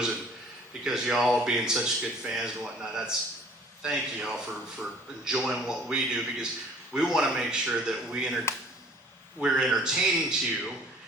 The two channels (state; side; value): normal; both; correlation 0.52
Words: and because y'all being such good fans and whatnot, thank y'all for enjoying what we do, because we want to make sure that we we're entertaining to you.